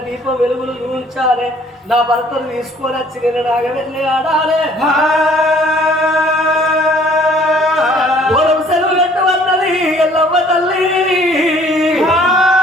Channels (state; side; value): normal; both; correlation 0.58